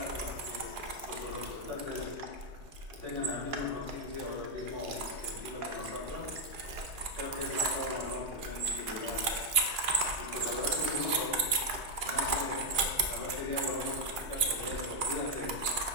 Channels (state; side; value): late; right; 2.4 ms